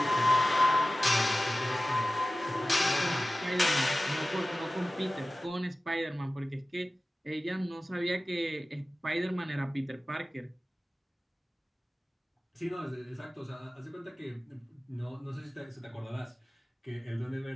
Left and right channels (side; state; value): both; normal; correlation 0.96